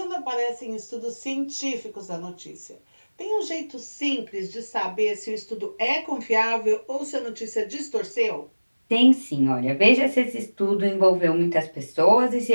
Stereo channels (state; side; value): inverted; both; correlation -1.00